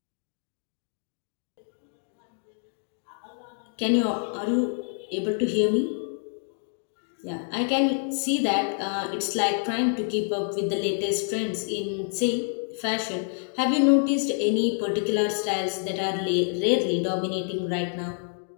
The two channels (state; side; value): silent; right; digital silence